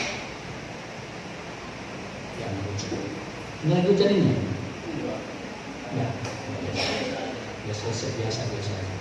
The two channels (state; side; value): identical; both; correlation 1.00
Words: Jangan hujan. Ini lagi hujan ini? Ya. Biasa.